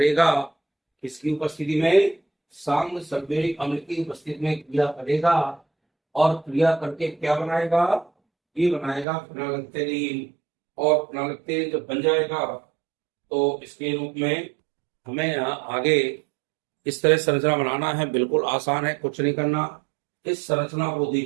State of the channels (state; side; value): drops out; left; at 9.1 s